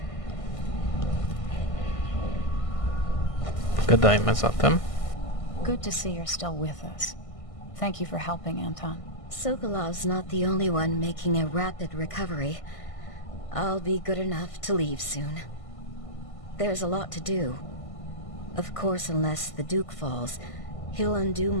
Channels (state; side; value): late; right; 1.5 ms